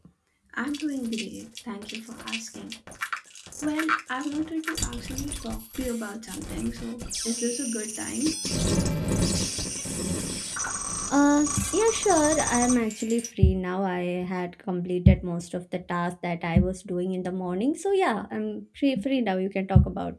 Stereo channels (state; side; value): identical; both; correlation 1.00